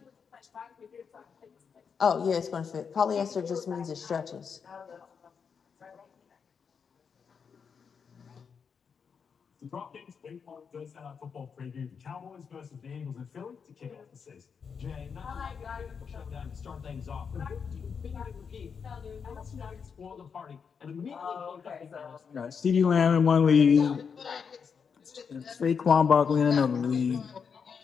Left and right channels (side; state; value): right; quieter; 6.3 dB